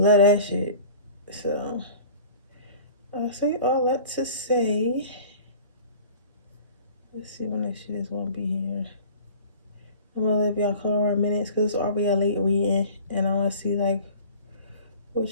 that shit. So I'll say all that to say, let's see when this shit is gonna be here. I'm gonna let y'all call around minutes because it's already a late reading, and I want to see like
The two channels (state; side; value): inverted; both; correlation -0.43